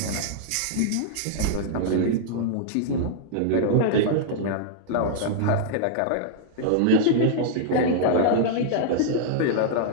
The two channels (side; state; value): both; different; correlation -0.02